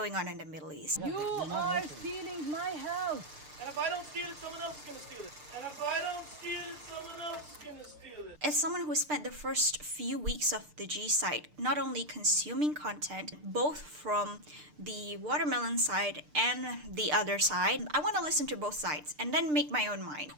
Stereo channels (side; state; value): left; late; 6.7 ms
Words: on in the Middle East. You are stealing my house. And if I don't steal it, someone else is going to steal it. And if I don't steal it, someone else is going to steal it. As someone who spent the first few weeks of the G site not only consuming content, both from the watermelon side and the other side, I want to listen to both sides and then make my own mind.